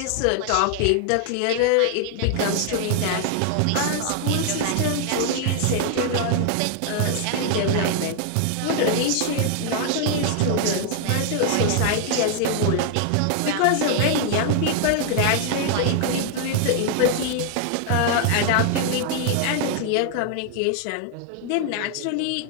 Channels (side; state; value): both; different; correlation 0.00